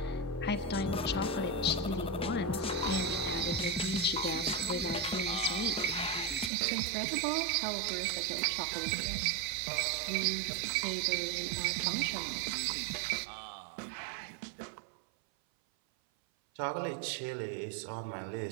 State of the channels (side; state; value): left; drops out; at 6.5 s